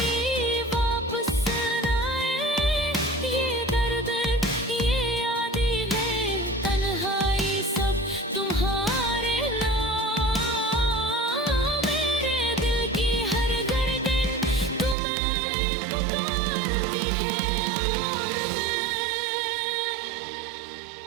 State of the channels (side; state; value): left; drops out; at 15.0 s